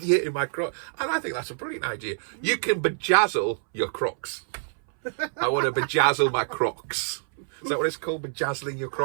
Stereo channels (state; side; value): silent; left; 61 dB below the other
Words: in my Crocs. And I think that's a brilliant idea. You can bejazzle your Crocs. I want to bejazzle my Crocs. Is that what it's called? Bejazzling your